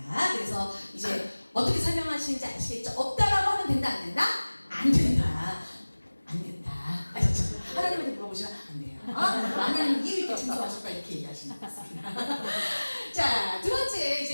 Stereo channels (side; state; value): both; inverted; correlation -1.00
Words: 그래서 이제 어떻게 설명하시는지 아시겠죠? 없다라고 하면 된다, 안 된다? 안 된다. 안 된다. 아셨죠? 하나님한테 물어보시면 안 돼요. 하나님 이유 있게 생소하실까 이렇게 얘기하시는 것 같습니다. 자, 두 번째